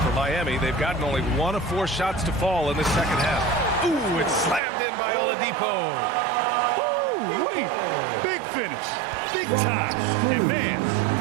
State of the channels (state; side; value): drops out; left; at 4.6 s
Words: For Miami, they've gotten only 1 of 4 shots to fall in the second half. Ooh, it's slammed in by Oladipo. Ooh, wait. Big finish. Big time. And man,